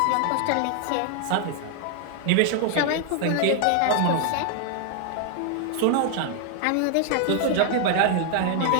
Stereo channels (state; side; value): different; both; correlation 0.00